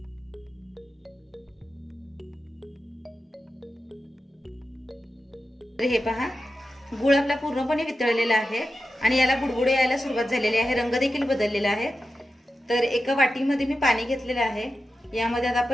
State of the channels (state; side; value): normal; both; correlation 0.91